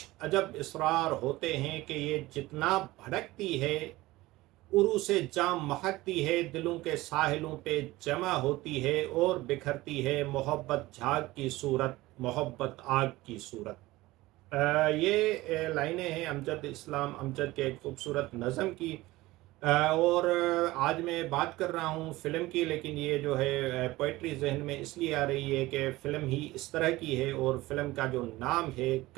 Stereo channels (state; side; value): quieter; left; 18.8 dB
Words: अजब इसरार होते हैं कि ये जितना भड़कती है उरू से जाम महकती है, दिलों के साहिलों पे जमा होती है और बिखरती है। मोहब्बत झाग की सूरत, मोहब्बत आग की सूरत। ये लाइनें हैं अमजद इस्लाम अमजद के एक खूबसूरत नज़म की। और आज मैं बात कर रहा हूँ फ़िल्म की, लेकिन ये जो है पोइट्री जहन में इसलिए आ रही है कि फ़िल्म ही इस तरह की है और फ़िल्म का जो नाम है